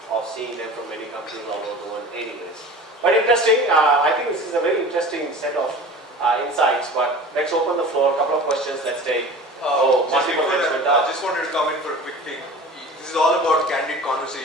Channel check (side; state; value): both; normal; correlation 0.39